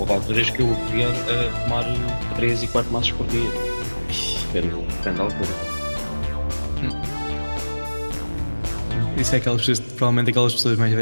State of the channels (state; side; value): inverted; both; correlation -1.00